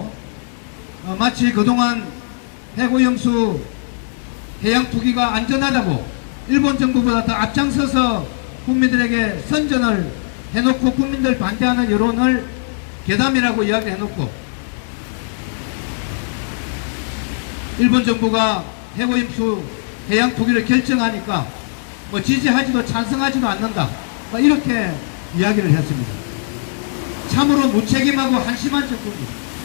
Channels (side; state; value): right; silent; 67 dB below the other